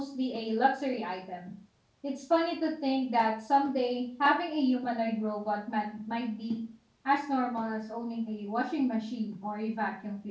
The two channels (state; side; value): identical; both; correlation 1.00